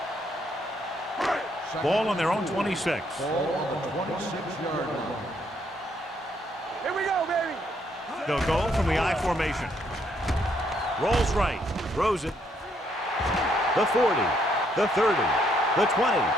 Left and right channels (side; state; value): both; normal; correlation 0.71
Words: Ball on their own 26. Ball on the 26-yard line. Here we go, baby. They'll go from the I formation. Rolls right, throws it. The 40, the 30, the 20,